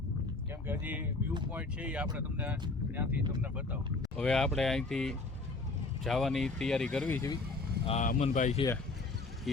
કેમ કે હજી વ્યૂ પોઈન્ટ છે એ આપણે તમને ત્યાંથી તમને બતાવો. હવે આપણે અહીંથી જવાની તૈયારી કરવી છે. આ અમનભાઈ છે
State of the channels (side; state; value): right; quieter; 3.5 dB